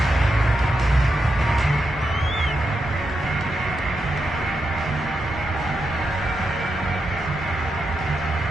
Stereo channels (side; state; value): both; normal; correlation 0.85